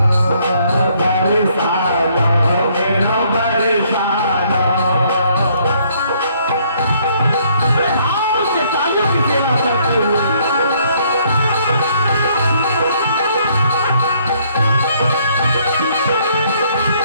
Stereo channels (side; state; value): both; inverted; correlation -0.66